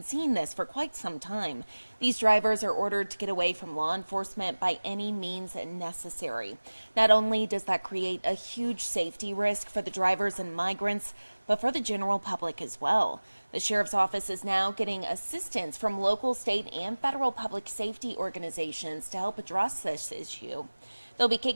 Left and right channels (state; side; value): inverted; both; correlation -1.00